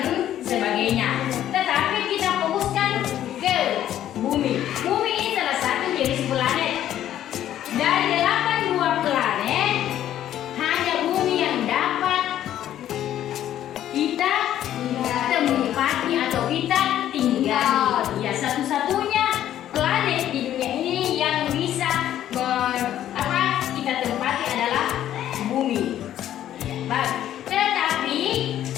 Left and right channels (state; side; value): quieter; right; 11.7 dB